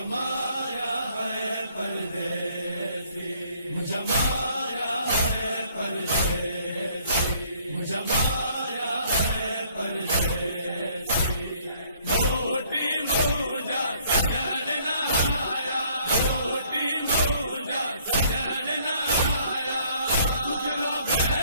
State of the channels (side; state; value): both; inverted; correlation -0.62